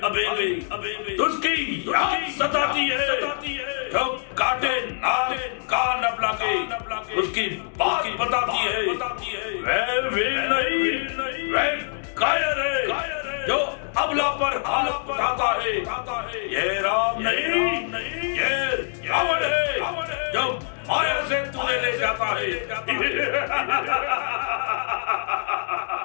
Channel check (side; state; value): right; silent; digital silence